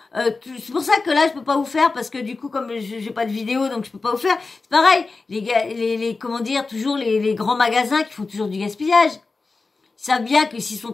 c'est pour ça que là, je peux pas vous faire, parce que du coup, comme j'ai pas de vidéo, donc je peux pas vous faire. C'est pareil, comment dire, toujours les grands magasins qui font toujours du gaspillage. Ils savent bien que s'ils sont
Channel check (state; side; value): quieter; right; 3.9 dB